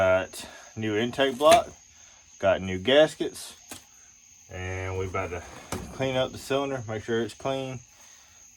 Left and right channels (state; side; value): identical; both; correlation 1.00